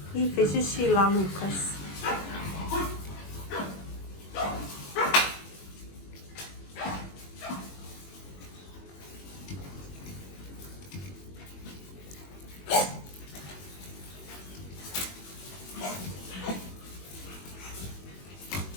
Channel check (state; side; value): late; right; 21 ms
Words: Ih, fez xixi lá, Lucas.